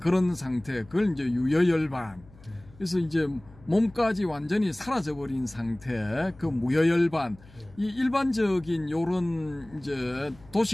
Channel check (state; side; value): noise; left; hum, 24 dB below the sound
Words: 상태, 그걸 이제 유여열반. 그래서 이제 몸까지 완전히 사라져버린 상태, 그 무여열반. 이 일반적인 요런 이제